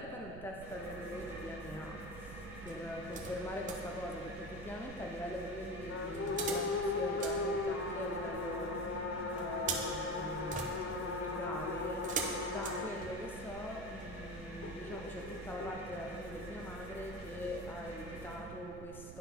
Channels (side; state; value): right; noise; rumble, 11 dB below the sound